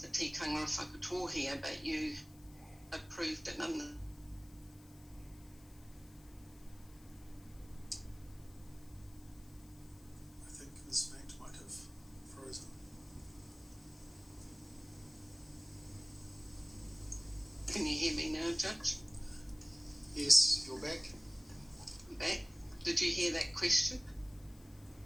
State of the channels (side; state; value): left; noise; hiss, 24 dB below the sound